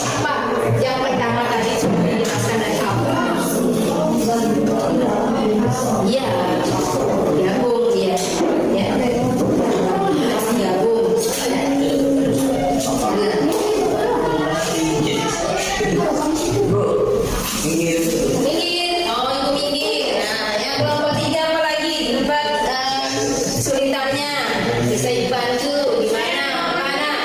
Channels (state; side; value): identical; both; correlation 1.00